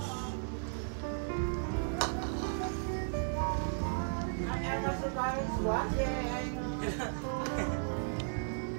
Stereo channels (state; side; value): silent; left; digital silence